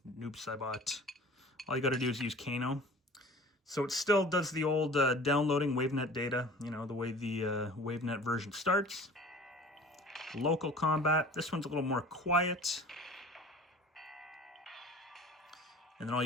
Noob Saibot. All you got to do is use Kano. So it still does the old downloading WaveNet data, the way the WaveNet version starts. Local combat. This one's a little more quiet. And then all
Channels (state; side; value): normal; both; correlation 0.44